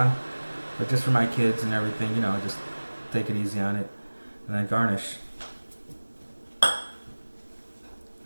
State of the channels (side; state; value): both; inverted; correlation -1.00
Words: But just for my kids and everything, you know, just take it easy on it. And then garnish.